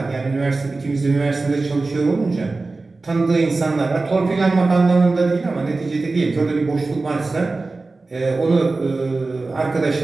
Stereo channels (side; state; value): left; quieter; 3.5 dB